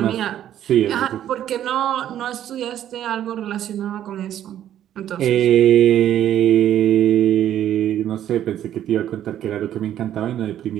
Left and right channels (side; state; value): left; quieter; 11.2 dB